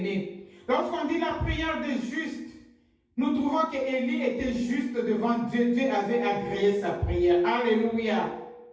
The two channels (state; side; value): identical; both; correlation 1.00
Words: Lorsqu'on dit la prière des justes, nous trouvons que Élie était juste devant Dieu. Dieu avait agréé sa prière. Alléluia.